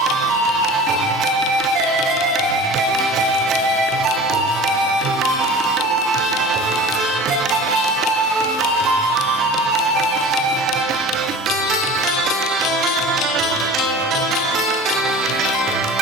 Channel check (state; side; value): normal; both; correlation 0.39